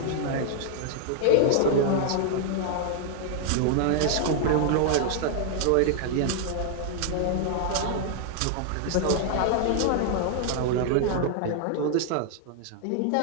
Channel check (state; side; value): different; both; correlation 0.00